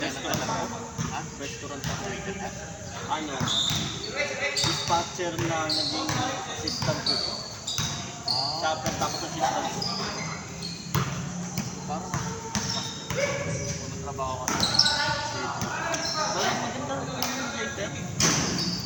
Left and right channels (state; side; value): identical; both; correlation 1.00